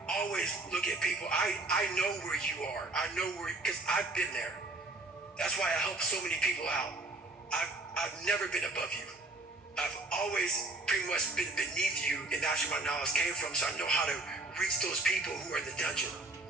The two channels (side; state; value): left; quieter; 3.0 dB